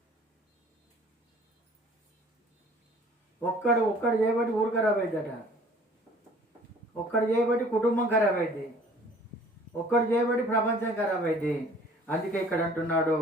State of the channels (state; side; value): normal; both; correlation 0.52